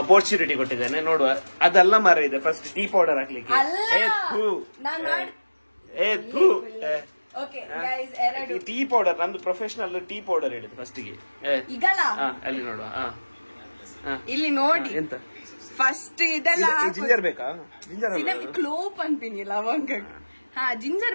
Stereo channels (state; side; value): inverted; both; correlation -1.00